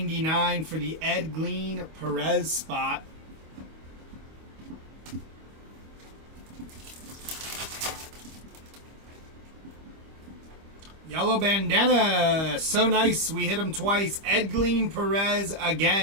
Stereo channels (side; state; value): left; late; 25 ms